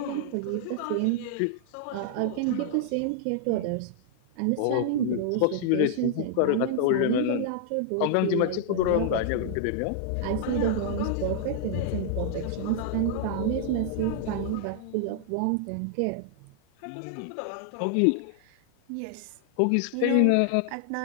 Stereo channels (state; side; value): different; both; correlation -0.01